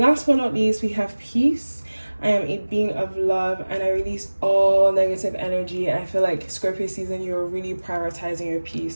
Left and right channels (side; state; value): both; inverted; correlation -1.00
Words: but not least, we have peace. I am a being of love, and I release all negative energy. I feel like Scorpio season, you're really prioritizing your